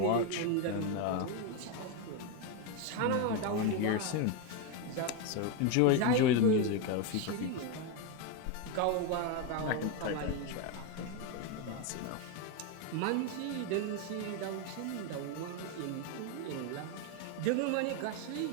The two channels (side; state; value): both; different; correlation 0.02